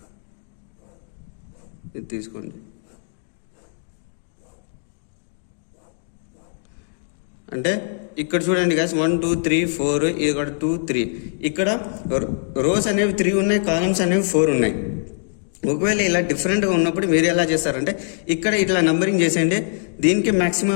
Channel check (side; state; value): right; silent; digital silence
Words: ఇది తీసుకోండి. అంటే ఇక్కడ చూడండి గైస్ 1 2 3 4, ఇక్కడ 2 3. ఇక్కడ రోస్ అనేవి 3 ఉన్నాయి, కాలమ్స్ అనేవి 4 ఉన్నాయి. ఒకవేళ ఇలా డిఫరెంట్గా ఉన్నప్పుడు మీరు ఎలా చేస్తారంటే ఇక్కడ ఇట్లా నంబరింగ్ చేసేయండి. దీనికి